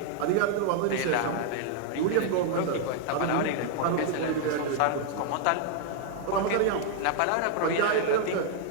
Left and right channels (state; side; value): different; both; correlation 0.00